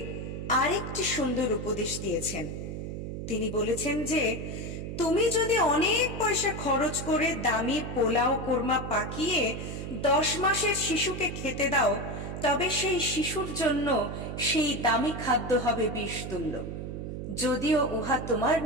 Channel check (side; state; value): right; noise; hum, 6 dB below the sound